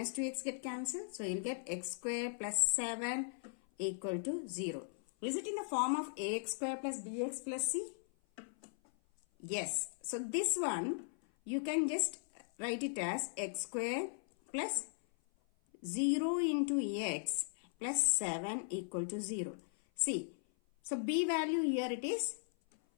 2x get cancelled. So you will get x square plus 7 equal to 0. Is it in the form of ax square plus bx plus c? Yes. So this one you can just write it as x square plus 0 into x plus 7 equal to 0. See, so b value here it is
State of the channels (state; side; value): silent; right; 52 dB below the other